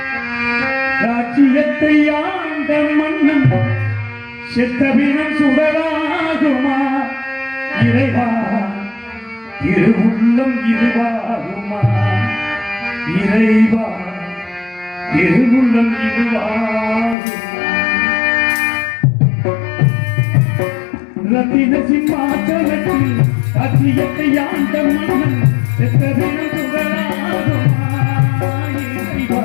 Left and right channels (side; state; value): right; drops out; at 17.2 s